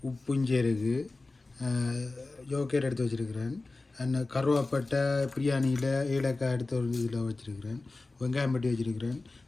உப்பு இஞ்சி இருக்குது, யோகேட் எடுத்து வச்சுருக்கிறேன், அந்த கருவாப்பட்டை பிரியாணியில் ஏலக்காய் எடுத்து ஒரு இதில் வச்சுருக்கிறேன், வெங்காயம் பட்டி வச்சுருக்கிறேன்,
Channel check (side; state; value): right; quieter; 3.4 dB